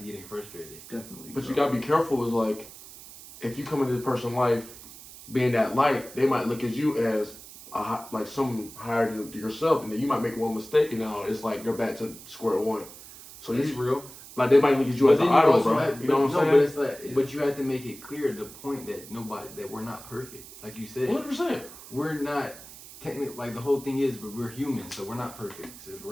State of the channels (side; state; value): right; noise; hiss, 17 dB below the sound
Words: getting frustrated. Definitely. but you bro. gotta be careful. Is like, if you come into this person's life being that light, they might look at you as like some higher than yourself, and then you might make one mistake, and now it's like they're back to square one. So It's you real. like they might look at you as an then idol, also bro. have- You know what I'm no, saying? but it's like, Yeah. but you have to make it clear the point that we're not perfect. Like you said, 100%. we're not technically, like the whole thing is, but we're human, so we're not perfect. So